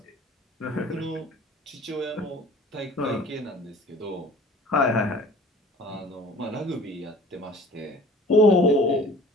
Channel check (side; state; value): both; normal; correlation 0.47